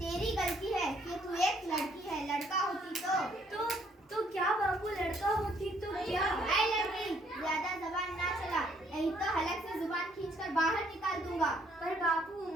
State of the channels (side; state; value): both; normal; correlation 0.66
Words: गलती है कि तू एक लड़की है, लड़का होती तो क्या बापू, लड़का होती तो क्या? ऐ लड़की, ज्यादा जबान ना चला, नहीं तो हलक से जुबान खींचकर बाहर निकाल दूंगा। पर बापू,